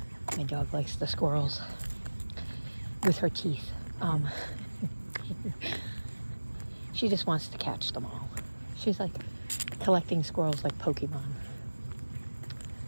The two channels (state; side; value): inverted; both; correlation -1.00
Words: My dog likes the squirrels with her teeth. She just wants to catch them all. She's like collecting squirrels like Pokemon.